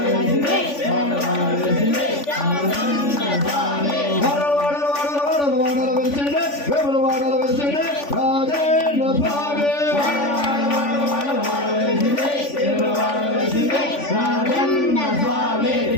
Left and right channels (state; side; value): late; right; 3.5 ms